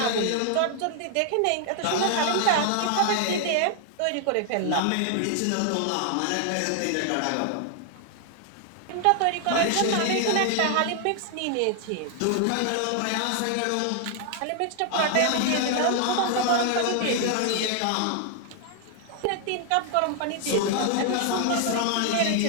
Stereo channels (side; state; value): both; different; correlation 0.00